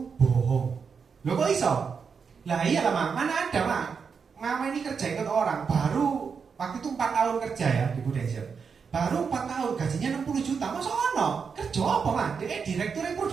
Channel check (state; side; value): quieter; left; 5.9 dB